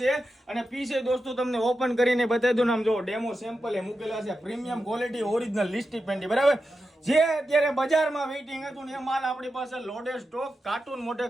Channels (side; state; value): both; normal; correlation 0.89